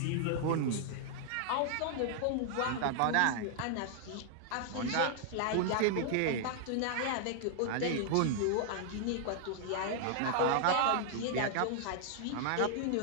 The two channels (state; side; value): different; both; correlation -0.01